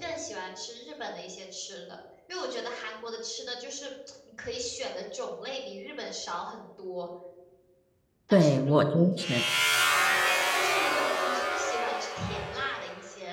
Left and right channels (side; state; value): both; identical; correlation 1.00